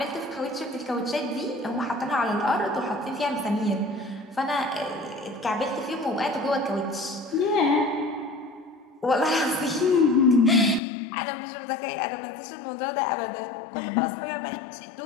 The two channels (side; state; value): right; drops out; at 10.8 s